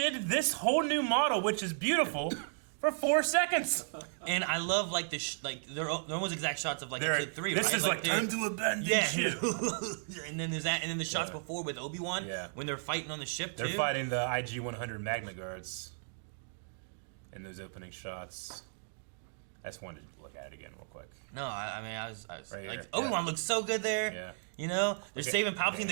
this whole new model, which is beautiful, for 4 seconds. And I love like they're almost exact shots of like episode 3. This right? is like time to abandon ship. And then there's that, and then the shots before with Obi-Wan when they're fighting on the ship. They're fighting the IG-100 Magna Guards. In those opening shots, I just wanted to look at it again real quick. No, I mean I was right like Obi-Wan looks so good there. Yeah. You know, they're saving Palpatine,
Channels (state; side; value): silent; left; digital silence